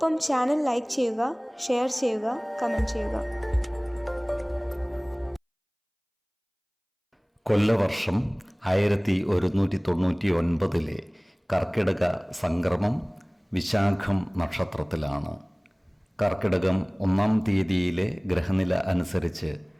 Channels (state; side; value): identical; both; correlation 1.00